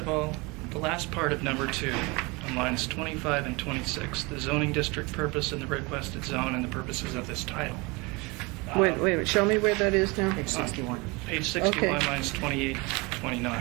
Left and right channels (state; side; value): quieter; left; 26.4 dB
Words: all, the last part of number 2, on lines 25 and 26, the zoning district purpose and the requested zone and the purposes of this title. Wait a minute, show me where that is now. Page 61. Page 61, Okay. lines 28,